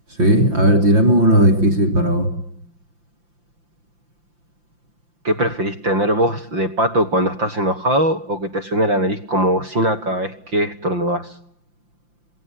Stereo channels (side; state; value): left; late; 5.8 ms